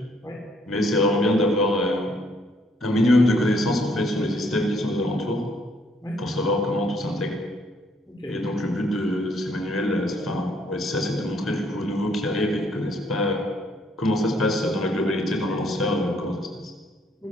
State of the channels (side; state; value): both; normal; correlation 0.67